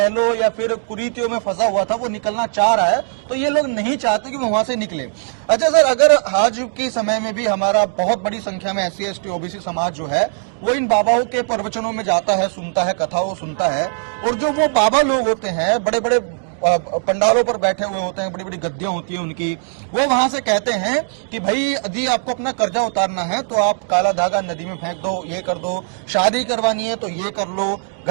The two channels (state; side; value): silent; left; digital silence